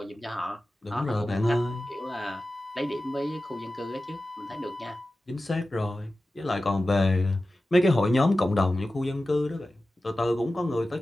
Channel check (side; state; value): both; normal; correlation 0.95